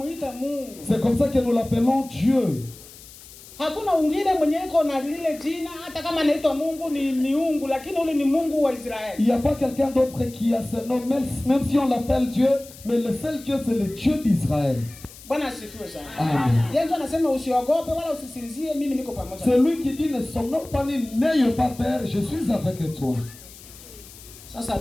C'est comme ça que nous l'appelons Dieu. Hakuna ungine mwenye iko na lile jina hata kama anaitwa Mungu ni miungu, lakini ule ni Mungu wa Israeli. Il n'y a pas quelqu'un d'autre qui a ce nom, même si on l'appelle Dieu, mais le seul Dieu c'est le Dieu d'Israël. Bwana asifiwe sana. Amen. Yesu anasema usiogope wala usisinzie, mimi niko pamoja. C'est lui qui dit ne somnons pas ni n'ayez pas peur, je suis avec toi. Sasa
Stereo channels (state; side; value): noise; left; hiss, 19 dB below the sound